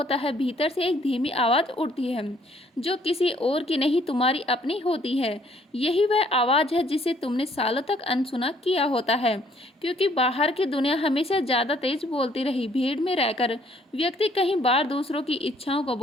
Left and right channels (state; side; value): normal; both; correlation 0.64